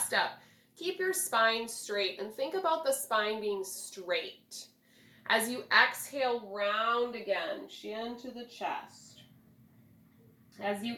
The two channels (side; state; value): both; identical; correlation 1.00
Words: up, keep your spine straight, and think about the spine being straight. As you exhale, round again, chin to the chest. As you